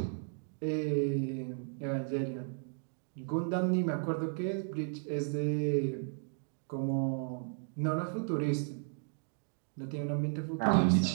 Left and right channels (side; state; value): left; silent; 55 dB below the other